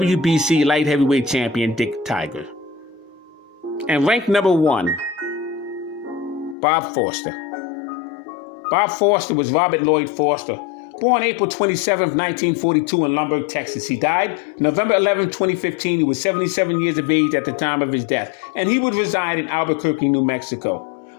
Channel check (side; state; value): right; drops out; at 6.6 s